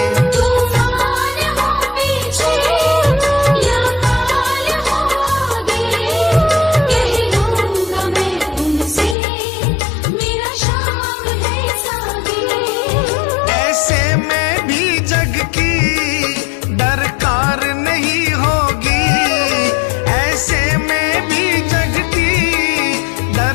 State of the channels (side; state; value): right; drops out; at 9.2 s